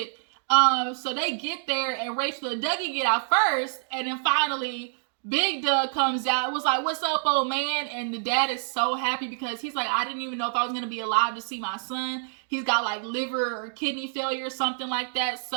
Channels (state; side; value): silent; left; digital silence